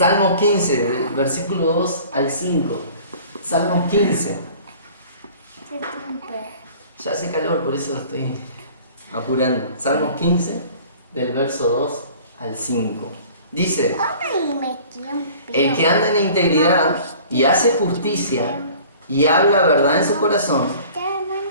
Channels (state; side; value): inverted; both; correlation -0.47